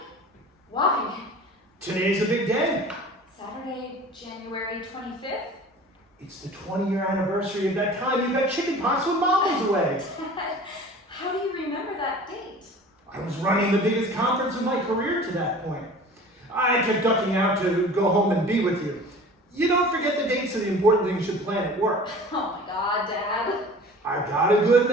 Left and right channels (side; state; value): both; normal; correlation 0.42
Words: Why? Today's a big day. Saturday, January 25th? It's the 20-year anniversary of that time you got chicken pox when Mom was away. Dad, how do you remember that date? I was running the biggest conference of my career to that point. I kept ducking out to go home and be with you. You don't forget the dates of the important things you plan at work. Oh my God, Dad. I got a good